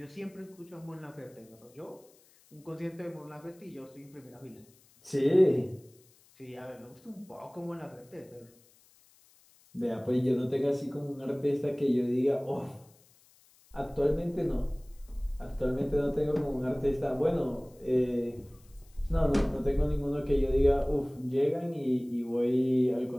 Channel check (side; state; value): left; noise; hiss, 29 dB below the sound